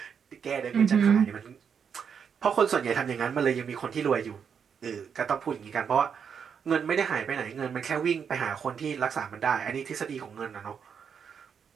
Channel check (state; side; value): quieter; left; 7.0 dB